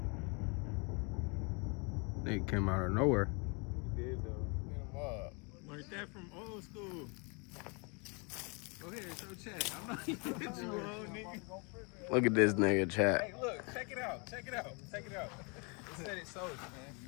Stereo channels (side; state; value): right; quieter; 32.4 dB